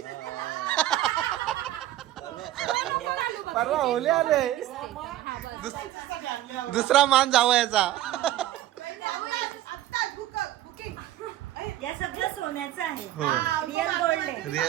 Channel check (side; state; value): left; quieter; 13.9 dB